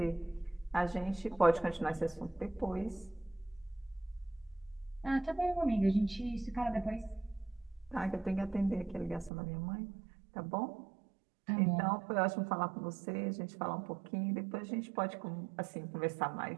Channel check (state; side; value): drops out; left; at 9.3 s